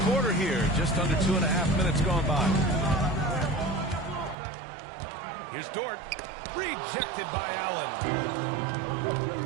quarter here. Just under 2.5 minutes gone by. Here's Dort. Rejected by Allen.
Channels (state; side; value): drops out; left; at 4.4 s